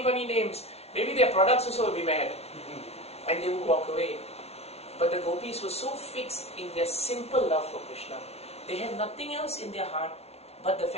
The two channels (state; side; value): late; right; 0.31 ms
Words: names. Maybe their products also will be mad. And they would walk away. But the gopis were so fixed in their simple love for Krishna. They had nothing else in their heart but the